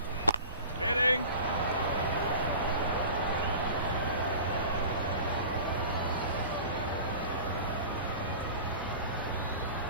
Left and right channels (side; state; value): both; inverted; correlation -0.38